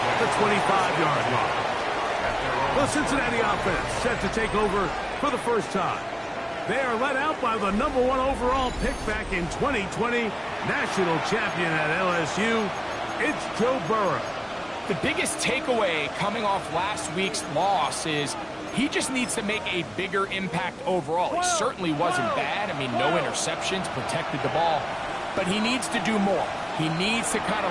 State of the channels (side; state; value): both; identical; correlation 1.00